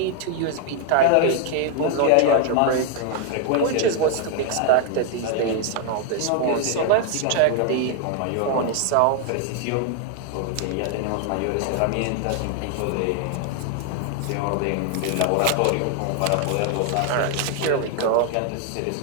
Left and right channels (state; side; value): different; both; correlation 0.00